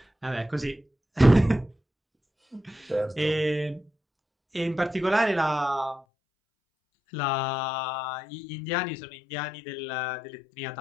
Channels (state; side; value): drops out; right; at 6.0 s